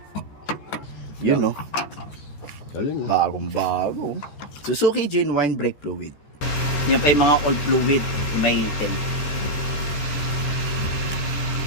yun no, bagong bago Suzuki Genuine Brake Fluid. Yan pa yung mga old fluid, may item.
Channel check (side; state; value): right; late; 14 ms